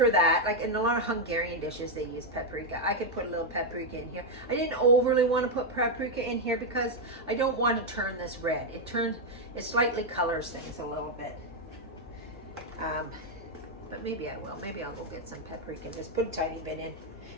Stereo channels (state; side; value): normal; both; correlation 0.02